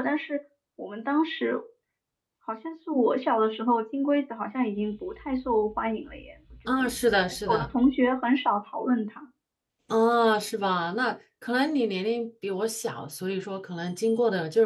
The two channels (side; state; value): both; identical; correlation 1.00